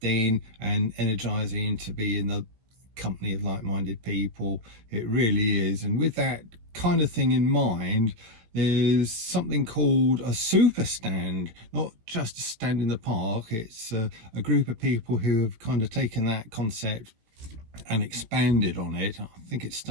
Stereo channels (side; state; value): left; late; 17 ms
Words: and energizing to be in the company of like-minded people. It really is. And with that kind of thing in mind, there's something called a super stand, not just a stand in the park. It's a group of people who have kind of taken that concept and expanded on it. I think it